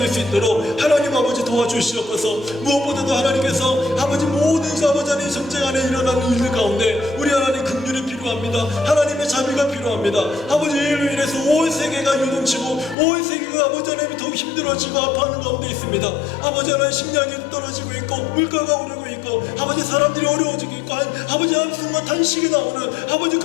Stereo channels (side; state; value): right; drops out; at 13.0 s